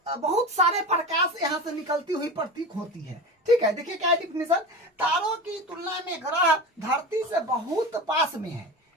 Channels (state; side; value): normal; both; correlation 0.28